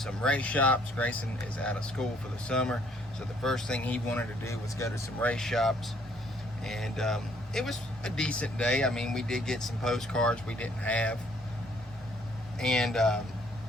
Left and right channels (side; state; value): both; normal; correlation 0.64